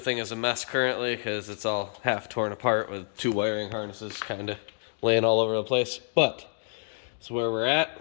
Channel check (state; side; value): silent; right; digital silence